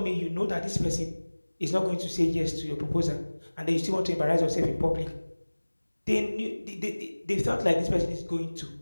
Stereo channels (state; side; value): inverted; both; correlation -1.00